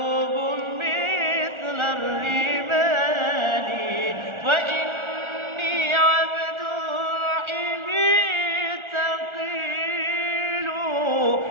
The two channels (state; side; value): late; left; 1.4 ms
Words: مثل الرمال فإني عبد الحب ثقيل